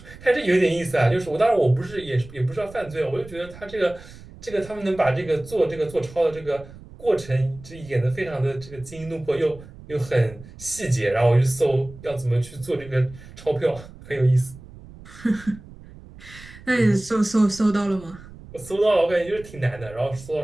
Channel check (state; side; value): noise; right; rumble, 18 dB below the sound